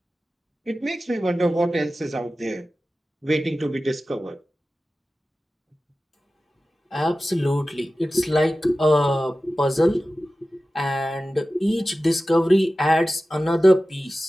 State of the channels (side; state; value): both; normal; correlation 0.95